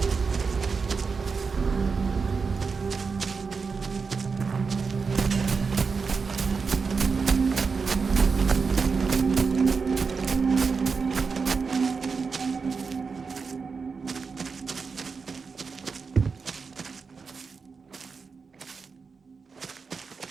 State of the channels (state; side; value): quieter; left; 5.0 dB